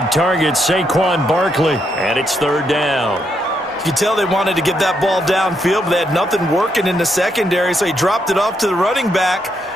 target, Saquon Barkley, and it's 3rd down. You could tell they wanted to get that ball downfield, but they had nothing working in the secondary, so he dropped it off to the running back.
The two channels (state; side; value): normal; both; correlation 0.78